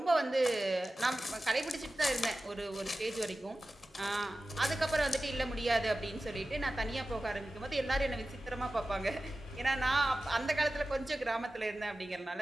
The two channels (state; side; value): normal; both; correlation 0.95